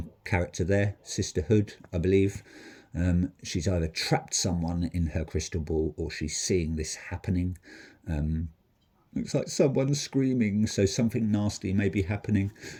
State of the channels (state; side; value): identical; both; correlation 1.00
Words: character there, Sisterhood, I believe. She's either trapped someone in her crystal ball or she's seeing this happening. Looks like someone's screaming, so something nasty may be happening,